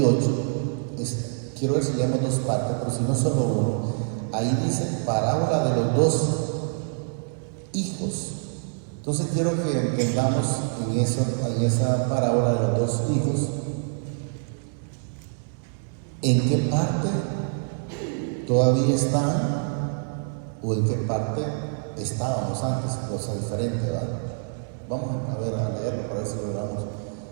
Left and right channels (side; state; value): left; silent; digital silence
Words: Quiero ver si leemos dos partes, pero si no solo uno. Ahí dice parábola de los dos hijos. Entonces quiero que entendamos en esa parábola de los dos hijos, en qué parte todavía están o en qué parte estábamos antes, cosa diferente, ¿verdad? Vamos a leerlo para ver si logramos